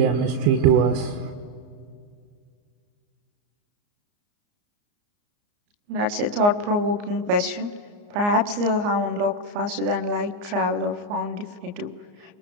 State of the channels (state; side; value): late; left; 34 ms